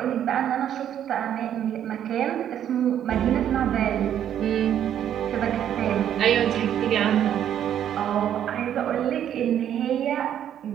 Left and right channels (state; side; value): quieter; left; 10.1 dB